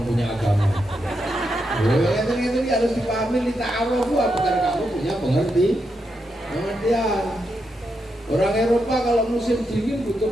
punya agama? Itu harus dipahami di ta'aruf, bukan kamu punya pengertian. Orang Eropa kalau musim dingin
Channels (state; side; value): normal; both; correlation 0.84